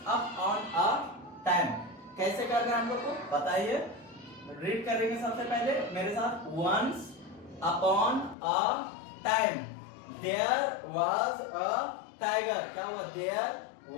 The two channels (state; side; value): drops out; right; at 8.3 s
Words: upon a time. कैसे करना है हम लोग को बताइए? रीड करेंगे सबसे पहले मेरे साथ। Once upon a time there was a tiger. क्या हुआ? There